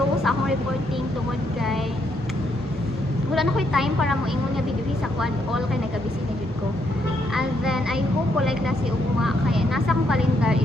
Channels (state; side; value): normal; both; correlation 0.75